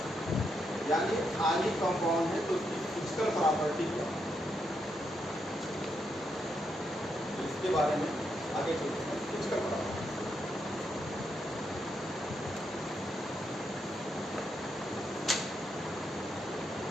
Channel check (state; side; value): normal; both; correlation 0.80